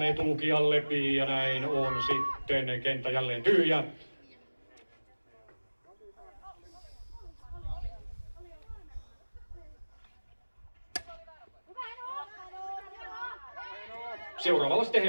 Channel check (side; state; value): both; inverted; correlation -1.00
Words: etulukijalle ja näin on sitten kenttä jälleen tyhjä. Seuraavalla sitten